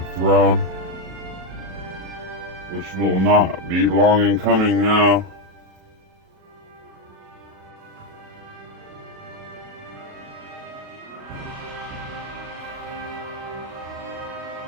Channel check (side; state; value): left; late; 37 ms